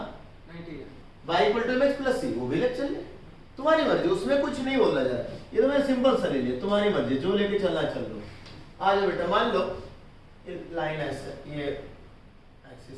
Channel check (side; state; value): both; identical; correlation 1.00